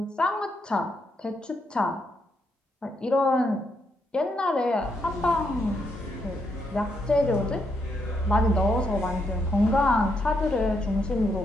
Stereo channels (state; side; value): normal; both; correlation 0.78